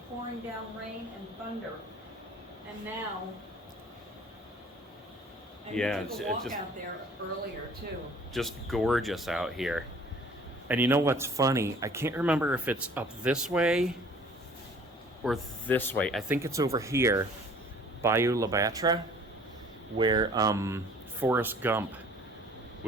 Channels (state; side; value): normal; both; correlation 0.51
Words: pouring down rain and thunder. And now, we took a walk out there earlier too. Just gorgeous out here. And you know what's funny? I can't remember if it's up this way or this way. I think it's over here, Bayou La Batre, where Forrest Gump